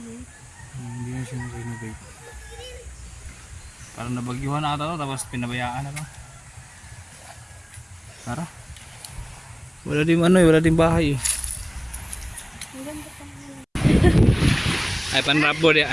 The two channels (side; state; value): both; identical; correlation 1.00